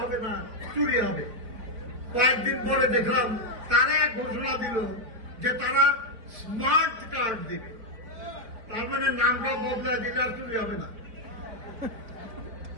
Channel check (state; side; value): late; left; 4.3 ms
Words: হবে না, চুরি হবে। কয়েকদিন পরে দেখলাম তারা এক ঘোষণা দিল যে তারা স্মার্ট কার্ড দিবে, তার মানে নামটা বদলায় দিলে আর চুরি হবে না,